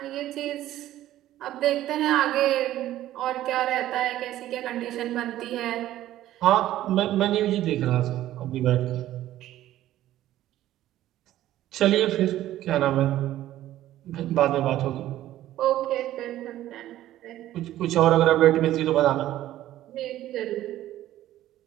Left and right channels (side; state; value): left; quieter; 13.7 dB